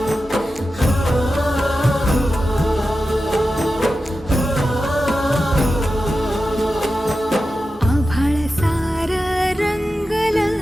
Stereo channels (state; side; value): normal; both; correlation 0.92